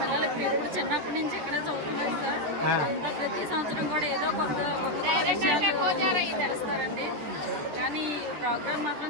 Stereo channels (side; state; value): left; late; 14 ms